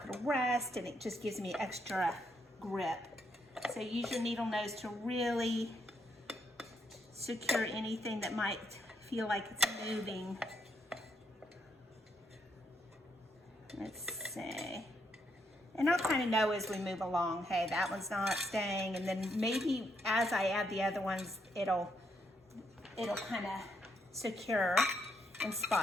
going to rust, and it just gives me extra grip. So use your needle nose to really secure anything that might feel like it's moving. Let's see. And I'll kind of know as we move along, hey, that one's not staying, and then maybe as I add the other ones, it'll kind of secure in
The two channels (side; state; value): both; normal; correlation 0.77